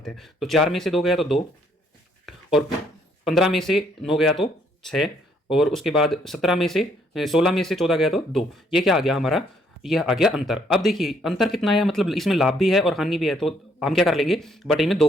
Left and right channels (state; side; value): normal; both; correlation 0.68